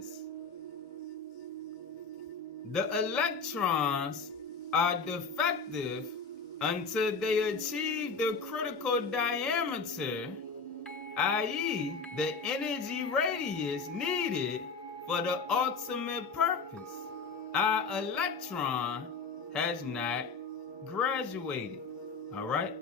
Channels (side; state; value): right; quieter; 4.8 dB